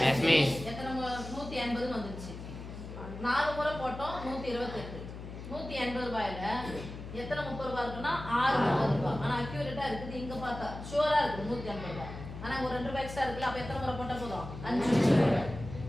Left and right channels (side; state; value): left; noise; hum, 11 dB below the sound